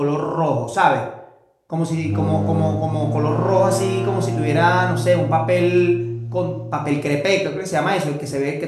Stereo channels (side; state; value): both; identical; correlation 1.00